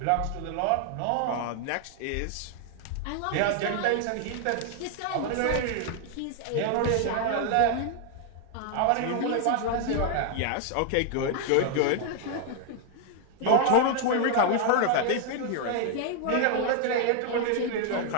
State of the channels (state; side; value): different; both; correlation 0.00